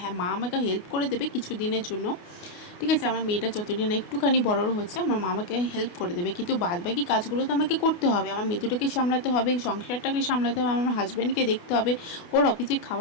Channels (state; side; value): late; right; 28 ms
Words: মা আমাকে হেল্প করে দেবে কিছু দিনের জন্য, ঠিক আছে। আমার মেয়েটা যতদিন একটুখানি বড় হচ্ছে, আমার মা আমাকে হেল্প করে দেবে, কিন্তু বাদবাকি কাজগুলো তো আমাকে করতে হবে। আমার মেয়েটাকে সামলাতে হবে, সংসারটাকে সামলাতে হবে, আমার হাজব্যান্ডকে দেখতে হবে, ওর অফিসে